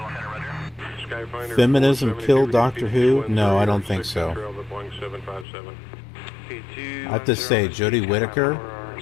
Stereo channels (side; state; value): right; drops out; at 5.5 s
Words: Roger. Skyfinder. Feminism killed Doctor Who? No, I don't think so. I have to say, Jodie Whittaker